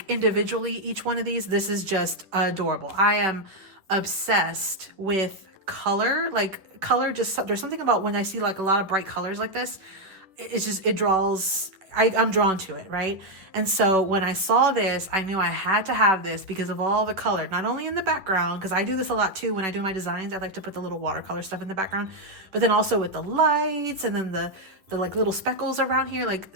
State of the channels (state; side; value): late; left; 10 ms